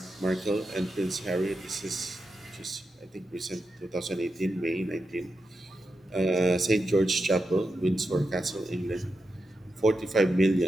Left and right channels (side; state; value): both; normal; correlation 0.88